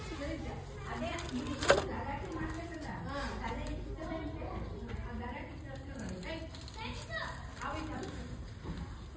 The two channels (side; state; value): both; identical; correlation 1.00